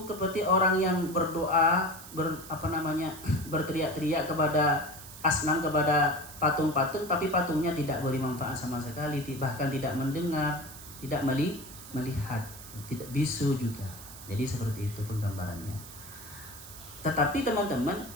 seperti orang yang berdoa, berteriak-teriak kepada asnam, kepada patung-patung, tapi patungnya tidak beri manfaat sama sekali, bahkan tidak mendengar, tidak melihat, tidak bisu juga. Jadi seperti itu penggambarannya. Tetapi teman-teman,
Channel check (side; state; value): right; noise; hiss, 15 dB below the sound